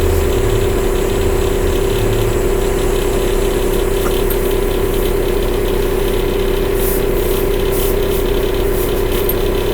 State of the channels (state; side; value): identical; both; correlation 1.00